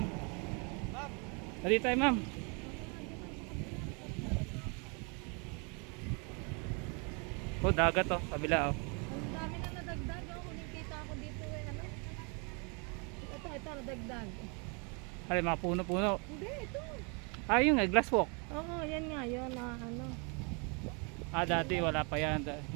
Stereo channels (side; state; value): left; quieter; 34.2 dB